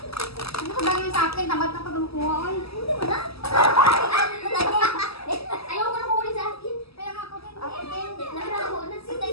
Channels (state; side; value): late; right; 0.77 ms